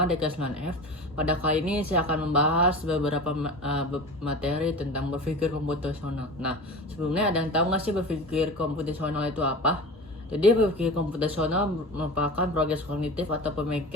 di kelas 9F. Pada kali ini saya akan membahas beberapa materi tentang berpikir komputasional. Nah, sebelumnya ada yang tahu nggak sih berpikir komputasional itu apa? Jadi berpikir komputasional merupakan proses kognitif atau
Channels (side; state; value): both; normal; correlation 0.32